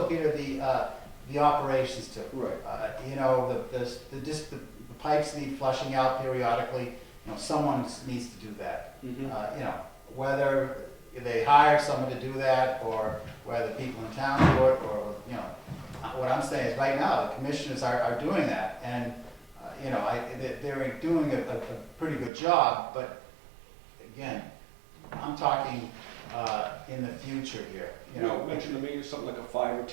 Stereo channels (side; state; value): left; drops out; at 22.3 s